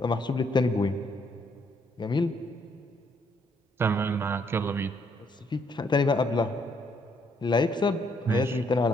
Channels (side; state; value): both; normal; correlation 0.70